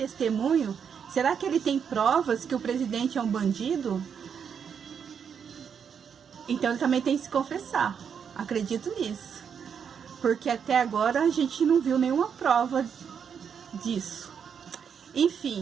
Será que ele tem provas que o presidente é um bandido? Então ele também tem que se confessar. Acredito nisso. Porque até agora a gente não viu nenhuma prova disso.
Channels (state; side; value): quieter; left; 7.2 dB